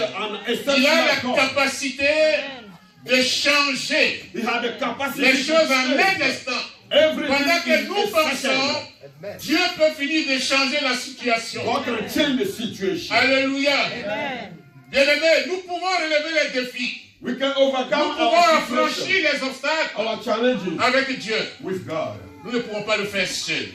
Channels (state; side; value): identical; both; correlation 1.00